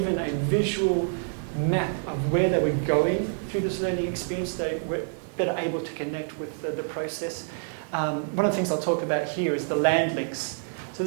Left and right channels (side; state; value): left; silent; digital silence